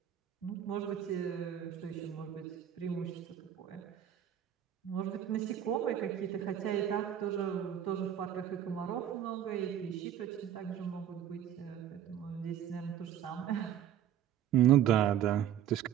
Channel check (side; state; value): left; quieter; 10.2 dB